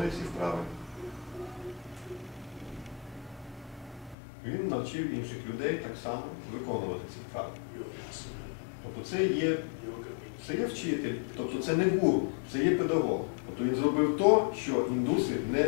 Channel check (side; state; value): right; drops out; at 4.2 s